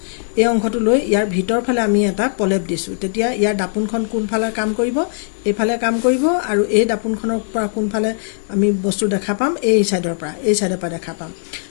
এই অংশটো লৈ ইয়াৰ ভিতৰ ফালে আমি এটা পলেপ দিছো। তেতিয়া ইয়াৰ দাপোনখন কোনফালে কাম কৰিব? এইফালে কাম কৰিব। আৰু এই দাপোনখনৰ পৰা কোনফালে আমি বস্তু দেখা পাম? এই চাইডৰ পৰা দেখা পাম।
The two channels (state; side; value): silent; right; digital silence